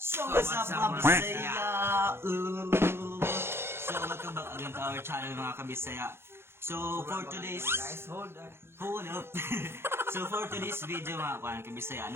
what's up mga Bisaya? So welcome back again to our channel mga kabisaya. So for today's hold up. So for today's video mga kuan kabisaya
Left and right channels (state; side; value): late; left; 0.12 ms